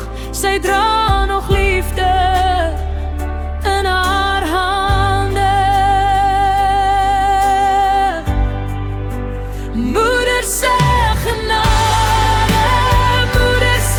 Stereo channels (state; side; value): identical; both; correlation 1.00